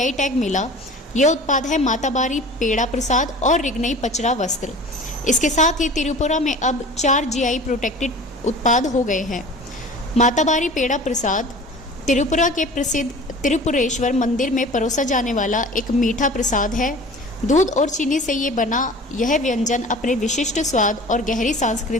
टैग मिला। यह उत्पाद है माताबारी पेड़ा प्रसाद और रिग्नई पचरा वस्त्र। इसके साथ ही त्रिपुरा में अब 4 जीआई प्रोटेक्टेड उत्पाद हो गए हैं। माताबारी पेड़ा प्रसाद त्रिपुरा के प्रसिद्ध त्रिपुरेश्वर मंदिर में परोसा जाने वाला एक मीठा प्रसाद है। दूध और चीनी से ये बना यह व्यंजन अपने विशिष्ट स्वाद और गहरी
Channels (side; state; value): both; normal; correlation 0.41